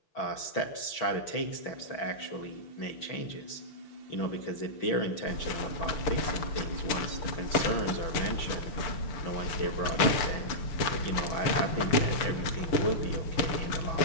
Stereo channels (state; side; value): late; right; 6.8 ms